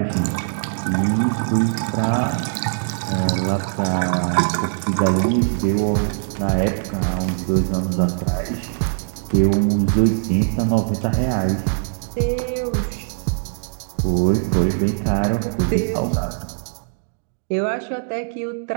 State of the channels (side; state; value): left; silent; digital silence